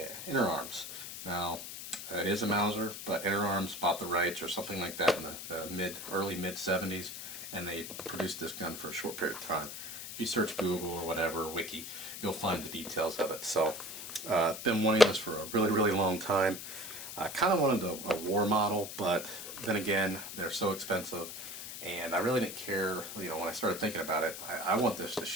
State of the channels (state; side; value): noise; left; hiss, 9 dB below the sound